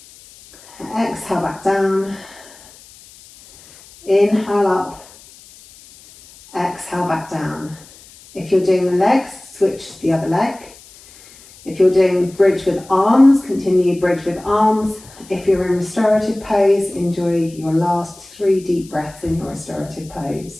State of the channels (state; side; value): noise; left; hiss, 23 dB below the sound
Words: Exhale back down. Inhale up. Exhale back down. If you're doing the legs, switch to the other leg. If you're doing bridge with arms, continue bridge with arms. If you're in restorative pose, enjoy your last 3 deep breaths in your restorative